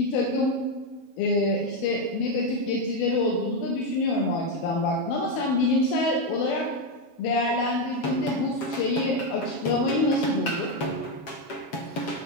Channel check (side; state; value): right; late; 7.2 ms